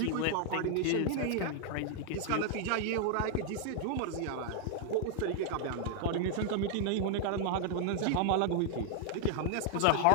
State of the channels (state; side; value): different; both; correlation 0.00